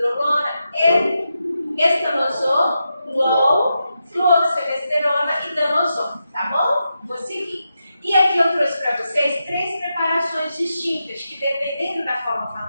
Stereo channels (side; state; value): both; inverted; correlation -0.87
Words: estanosol, fluoxemesterona e danosol, tá bom? Vou seguir. E aqui eu trouxe para vocês 3 preparações distintas, que dependendo da forma